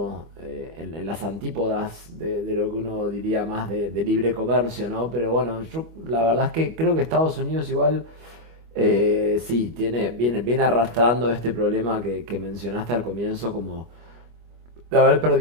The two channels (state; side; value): late; left; 25 ms